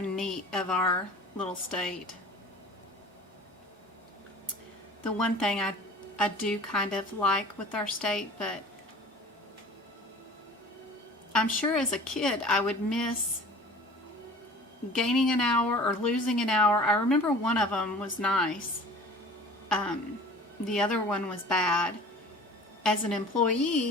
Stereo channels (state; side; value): normal; both; correlation 0.43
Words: neat of our little state. The one thing I do kind of like with our state, but I'm sure as a kid I would miss gaining an hour or losing an hour. I remember one of them was nice. The other one was bad. As an